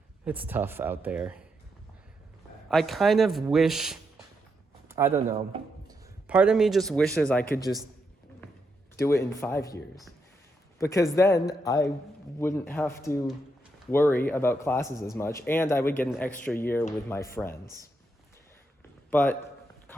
It's tough out there. I kind of wish. I don't know. Part of me just wishes I could just do it in 5 years. Because then I wouldn't have to worry about classes as much, and I would get an extra year with my friends. But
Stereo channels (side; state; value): both; normal; correlation 0.81